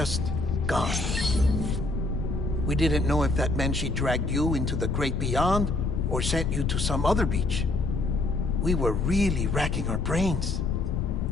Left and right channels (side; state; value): left; noise; rumble, 3 dB below the sound